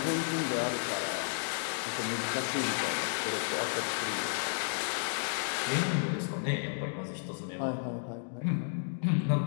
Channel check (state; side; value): silent; right; digital silence